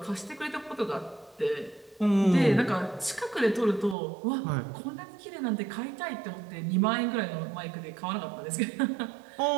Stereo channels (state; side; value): drops out; left; at 4.0 s